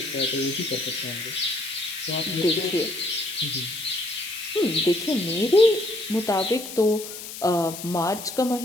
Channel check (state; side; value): noise; left; hiss, 11 dB below the sound